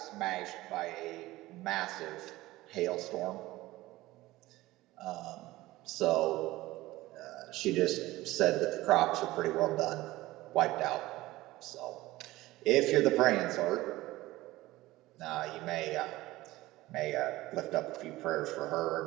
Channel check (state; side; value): quieter; left; 18.0 dB